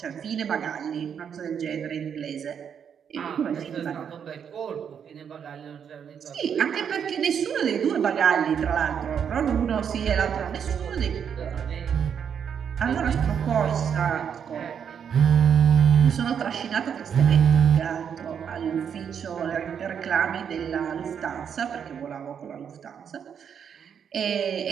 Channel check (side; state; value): left; quieter; 7.7 dB